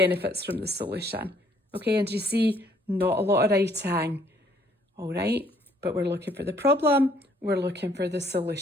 from the solution? Okay, and you see, not a lot of writing. All right, but we're looking for the problem. We're looking for the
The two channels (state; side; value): normal; both; correlation 0.63